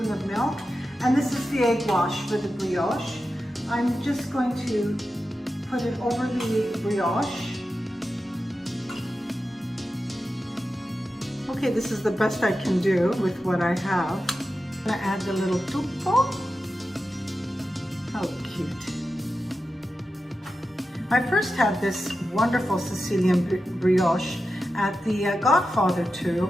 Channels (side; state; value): both; normal; correlation 0.91